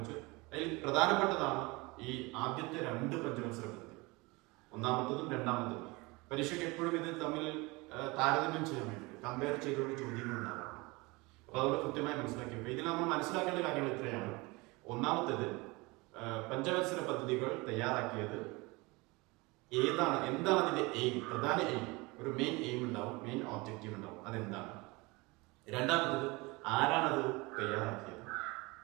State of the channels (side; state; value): left; quieter; 24.5 dB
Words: അതിൽ പ്രധാനപ്പെട്ടതാണ് ഈ ആദ്യത്തെ 2 പഞ്ചവത്സര പദ്ധതി, ഒന്നാമത്തതും രണ്ടാമത്തതും. പരീക്ഷയ്ക്ക് എപ്പോഴും ഇത് തമ്മിൽ താരതമ്യം ചെയ്യാൻ വേണ്ടിയിട്ട് കമ്പയർ ചെയ്തുകൊണ്ട് ചോദ്യങ്ങൾ ഉണ്ടാകാം. അപ്പൊ അതുകൊണ്ട് കൃത്യമായി മനസ്സിലാക്കിയപ്പോൾ ഇതിൽ നമ്മൾ മനസ്സിലാക്കേണ്ട കാര്യങ്ങൾ ഇത്രയാണ്. ഒന്നാമത്തേത്, പഞ്ചവത്സര പദ്ധതികൾ തയ്യാറാക്കിയത് എന്താണ് അതിന്റെ എയിം, പ്രധാന എയിം, ഒരു മെയിൻ എയിം ഉണ്ടാവും, മെയിൻ ഓബ്ജക്റ്റീവ് ഉണ്ടാവും, അതെന്താണ്. രണ്ടാമത്തേത്, ആരാണത് തയ്യാറാക്കിയത്.